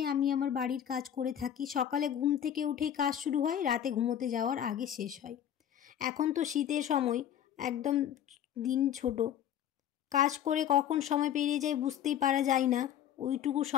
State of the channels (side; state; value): right; quieter; 10.0 dB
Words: আমি আমার বাড়ির কাজ করে থাকি। সকালে ঘুম থেকে উঠেই কাজ শুরু হয়, রাতে ঘুমোতে যাওয়ার আগে শেষ হয়। এখন তো শীতের সময়, একদম দিন ছোট, কাজ করে কখন সময় পেরিয়ে যায় বুঝতেই পারা যায় না। ওইটুকু